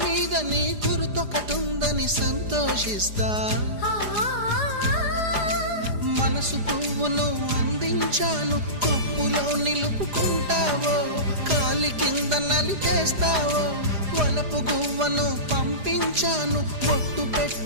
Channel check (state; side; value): late; left; 4.9 ms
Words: మీద నీ గురుతొకటుందని సంతోషిస్తా. మనసు పువ్వును అందించాను, కొప్పులో నిలుపుకుంటావో, కాలి కింద నలిపేస్తావో. వలపు గువ్వను పంపించాను, బొట్టు